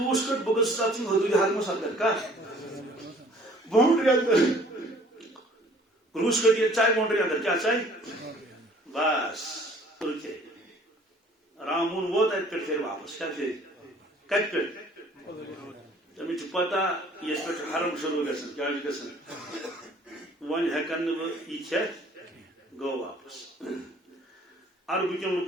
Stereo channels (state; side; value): normal; both; correlation 0.54